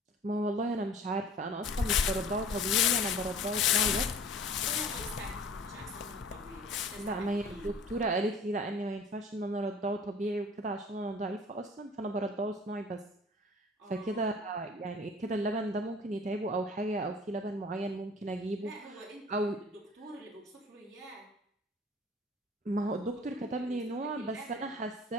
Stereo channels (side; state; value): both; normal; correlation 0.47